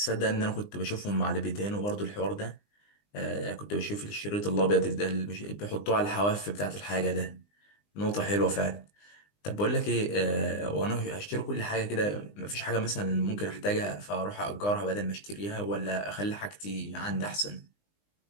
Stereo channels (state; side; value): late; right; 20 ms